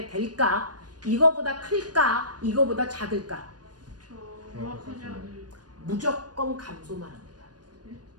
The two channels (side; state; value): left; late; 0.69 ms